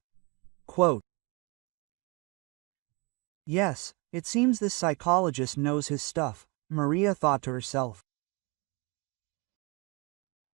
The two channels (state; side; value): quieter; left; 29.0 dB